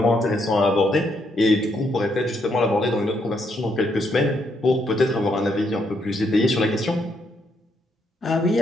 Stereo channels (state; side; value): normal; both; correlation 0.75